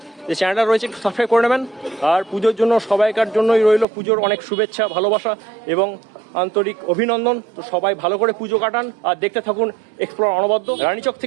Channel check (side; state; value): left; drops out; at 3.9 s